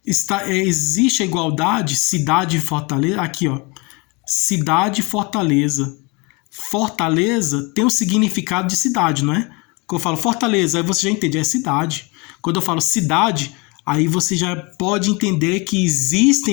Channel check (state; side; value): quieter; right; 28.6 dB